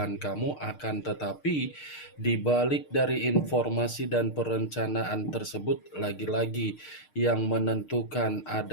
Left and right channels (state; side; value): late; right; 6.6 ms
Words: kamu, akan tetapi di balik dari informasi dan perencanaan tersebut, lagi-lagi yang menentukan